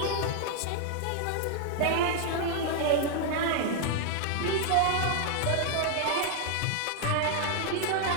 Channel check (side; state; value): both; different; correlation 0.00